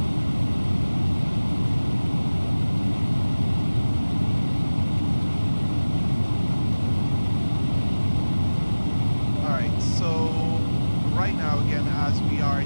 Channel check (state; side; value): inverted; both; correlation -1.00